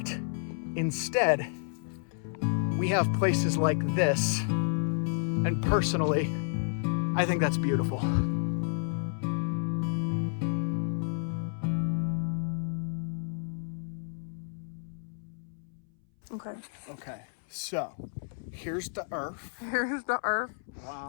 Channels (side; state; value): right; silent; 57 dB below the other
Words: Instead, we have places like this, and personally, I think that's beautiful. Okay, so here's the earth. Here's the earth.